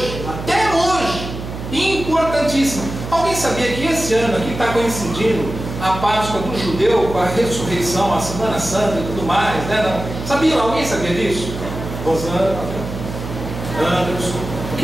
até hoje, importantíssima. Alguém sabia que esse ano aqui está coincidindo a Páscoa do judeu com a ressurreição, a Semana Santa e tudo mais, né? Sabia? Alguém sabia disso? Rosana, Anderson,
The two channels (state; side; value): noise; right; hum, 8 dB below the sound